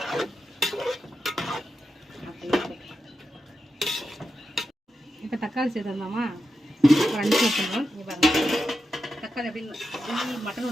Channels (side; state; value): both; normal; correlation 0.88